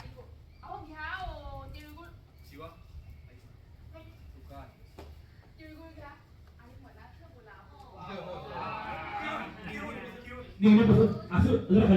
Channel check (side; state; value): both; identical; correlation 1.00